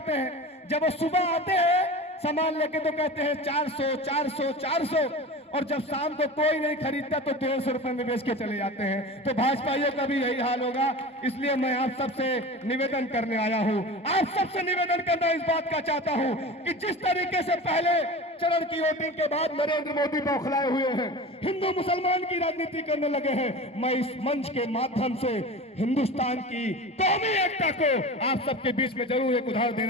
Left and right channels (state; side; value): normal; both; correlation 0.32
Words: हैं, जब वो सुबह आते हैं सामान लेके तो कहते हैं 400 400 400, और जब शाम को कोई नहीं खरीदता तो 150 रुपए में बेच के चले जाते हैं। तो भाजपाइयों का भी यही हाल होगा। इसलिए मैं आप सबसे निवेदन करने आया हूं, आप सबसे निवेदन करना इस बात का चाहता हूं कि जिस तरीके से पहले चरण की वोटिंग के बाद नरेंद्र मोदी बौखलाए हुए हैं, हिंदू मुसलमान की राजनीति करने लगे हैं, मैं इस मंच के माध्यम से हिंदुस्तान की कौमी एकता को आप सबके बीच में जरूर एक उदाहरण